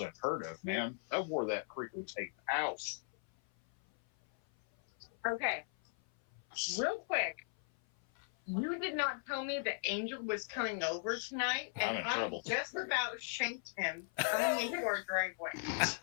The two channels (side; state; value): right; silent; 53 dB below the other